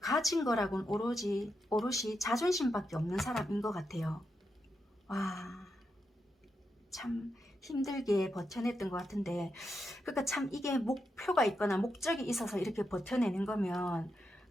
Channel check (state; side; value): normal; both; correlation 0.85